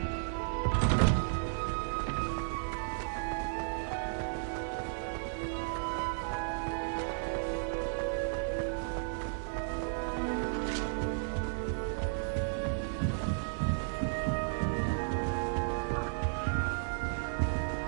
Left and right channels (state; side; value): silent; left; 55 dB below the other